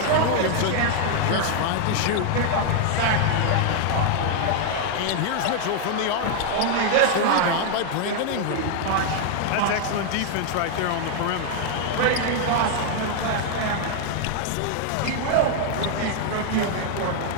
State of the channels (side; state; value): both; different; correlation 0.00